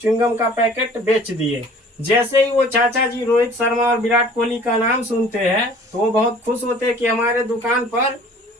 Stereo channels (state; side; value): normal; both; correlation 0.50